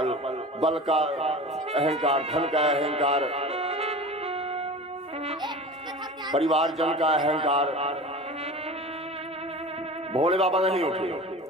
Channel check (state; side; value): normal; both; correlation 0.35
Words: बल का अहंकार, धन का अहंकार, परिवार जन का अहंकार। भोले बाबा नहीं उठे।